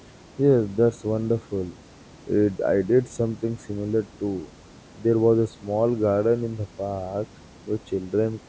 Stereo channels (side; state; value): both; identical; correlation 1.00